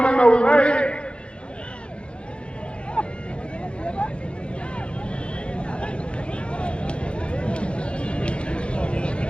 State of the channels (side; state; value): right; late; 0.057 ms